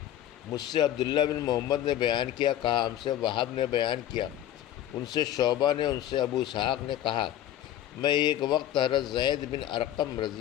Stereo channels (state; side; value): quieter; right; 12.0 dB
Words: مجھ سے عبداللہ بن محمد نے بیان کیا، کہا ہم سے وہب نے بیان کیا، ان سے شعبہ نے، ان سے ابو اسحاق نے کہا میں ایک وقت حضرت زید بن ارقم